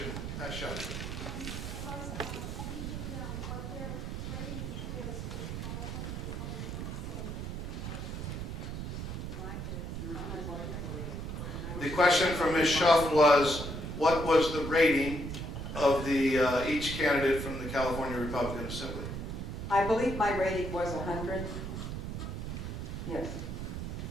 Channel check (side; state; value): right; noise; rumble, 5 dB below the sound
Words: Pat Shelley. The question from Ms. Schuff was, what was the rating of the each candidate from the California Republican Assembly? I believe my rating was 100. Yes.